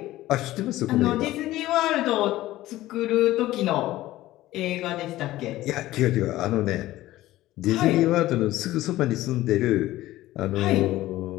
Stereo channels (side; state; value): right; quieter; 16.0 dB